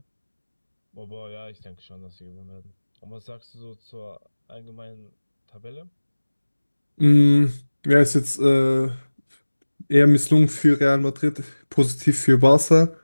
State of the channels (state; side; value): inverted; both; correlation -1.00